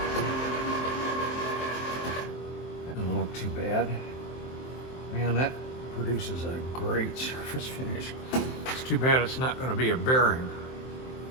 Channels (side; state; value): right; late; 23 ms